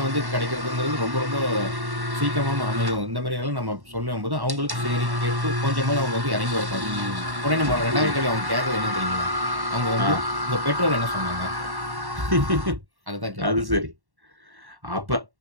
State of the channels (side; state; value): left; late; 1.1 ms